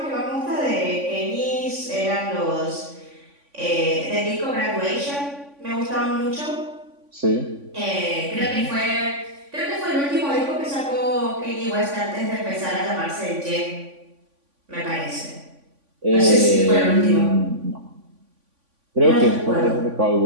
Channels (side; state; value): left; late; 3.5 ms